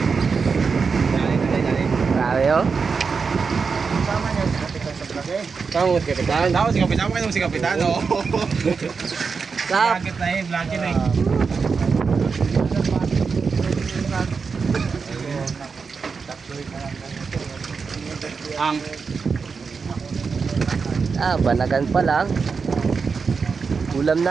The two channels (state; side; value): quieter; left; 5.2 dB